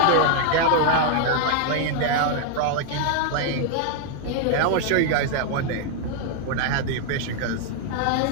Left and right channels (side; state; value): both; different; correlation 0.00